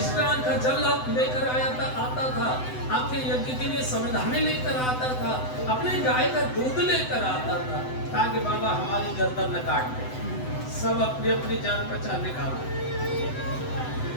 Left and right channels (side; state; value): right; late; 7.9 ms